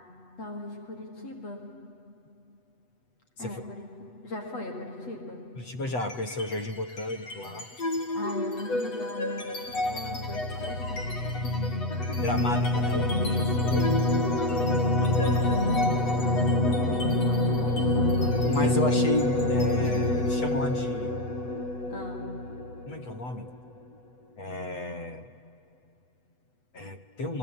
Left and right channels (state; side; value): late; right; 8.1 ms